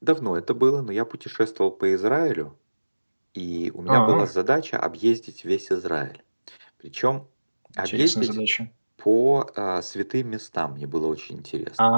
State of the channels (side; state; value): both; inverted; correlation -1.00